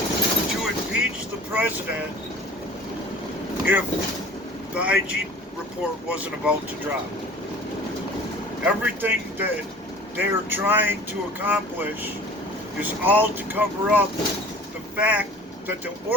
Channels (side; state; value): both; normal; correlation 0.45